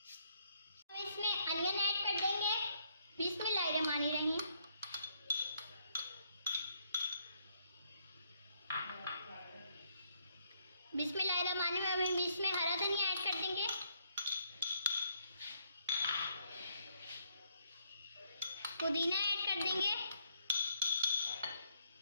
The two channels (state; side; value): inverted; both; correlation -0.71